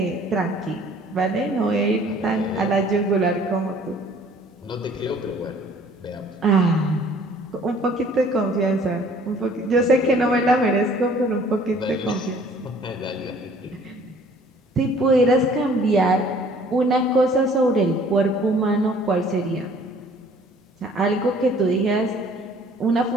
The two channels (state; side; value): normal; both; correlation 0.55